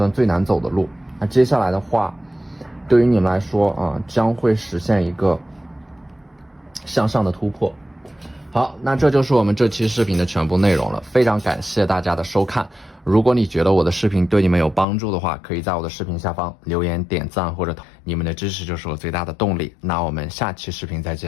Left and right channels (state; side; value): drops out; right; at 14.9 s